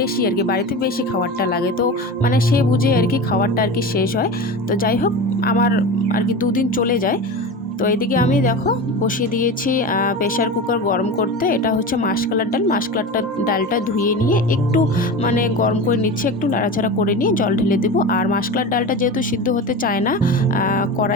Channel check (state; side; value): normal; both; correlation 0.27